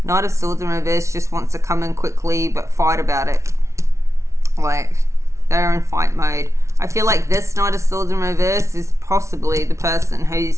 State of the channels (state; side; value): late; left; 0.14 ms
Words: Knight of Swords in reverse just wants to come in quickly but fight about it. Like they're in fight mode. I feel like this Knight of Swords in reverse is possibly the person who's